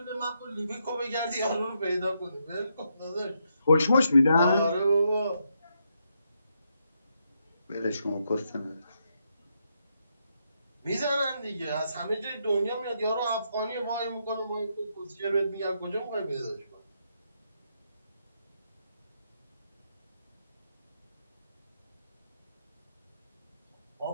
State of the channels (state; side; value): inverted; both; correlation -0.79